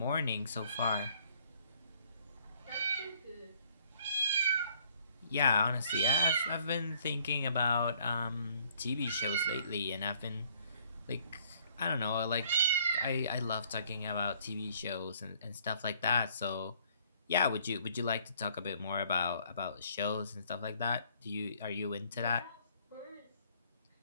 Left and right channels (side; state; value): both; inverted; correlation -0.61